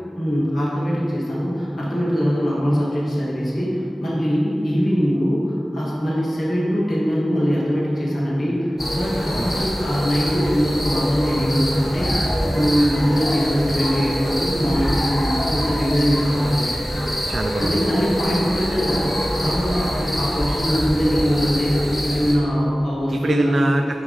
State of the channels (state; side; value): normal; both; correlation 0.96